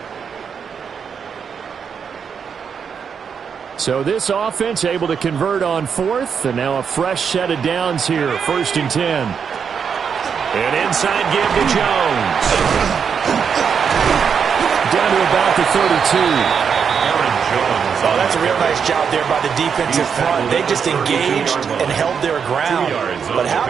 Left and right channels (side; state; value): left; quieter; 6.8 dB